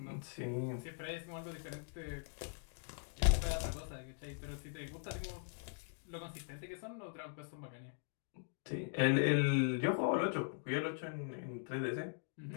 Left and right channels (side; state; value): right; silent; digital silence